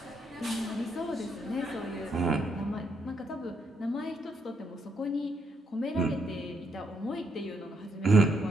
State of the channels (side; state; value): both; normal; correlation 0.76